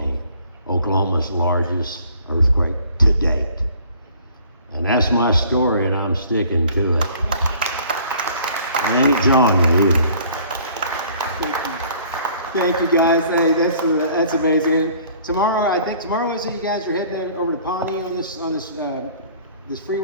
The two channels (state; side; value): inverted; both; correlation -0.54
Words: Oklahoma's largest earthquake to date. And that's my story, and I'm sticking to it. I ain't John either. Thank you, guys. Hey, that's amazing. Tomorrow is it? You guys are heading over to Pawnee on this this